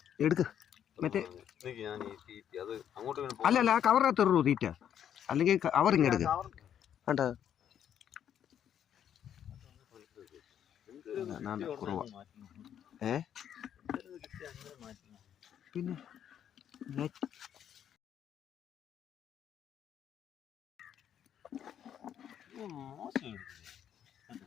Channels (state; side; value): quieter; right; 9.5 dB